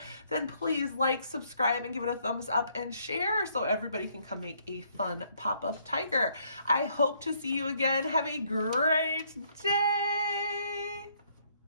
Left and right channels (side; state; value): both; inverted; correlation -0.68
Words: then please like, subscribe, and give it a thumbs up and share so everybody can come make a fun pop-up tiger. I hope to see you again. Have a great day.